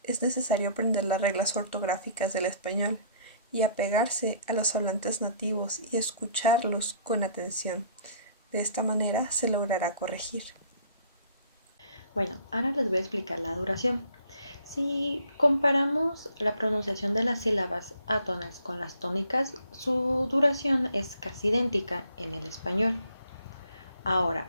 es necesario aprender las reglas ortográficas del español y apegarse a los hablantes nativos y escucharlos con atención. De esta manera se logrará corregir. Bueno, ahora les voy a explicar la duración. Si comparamos la pronunciación de las sílabas átonas con las tónicas, su duración es casi idéntica en el español. Ahora,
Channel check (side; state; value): both; inverted; correlation -0.58